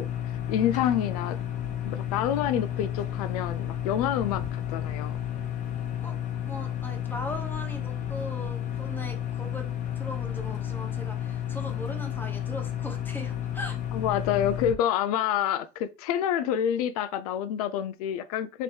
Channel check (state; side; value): quieter; right; 9.3 dB